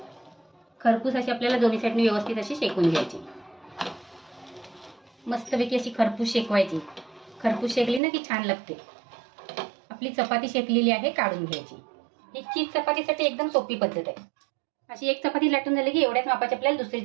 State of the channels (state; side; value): drops out; left; at 8.0 s